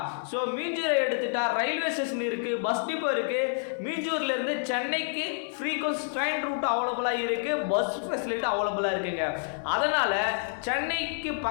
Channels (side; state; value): right; silent; 59 dB below the other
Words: ஸோ மீஞ்சூரை எடுத்துட்டா ரயில்வே ஸ்டேஷன் இருக்கு, பஸ் டிப்போ இருக்கு. மீஞ்சூர்ல இருந்து சென்னைக்கு ஃப்ரீக்வன்ஸ் ட்ரெயின் ரூட் அவைலபிளாக இருக்கு, பஸ் ஃபெசிலிட்டி அவைலபிளாக இருக்குங்க. அதனால சென்னைக்கு